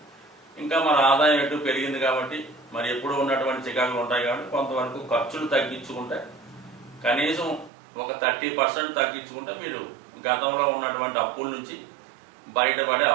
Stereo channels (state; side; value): drops out; left; at 7.7 s